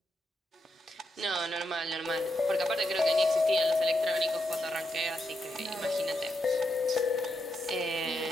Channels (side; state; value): both; normal; correlation 0.83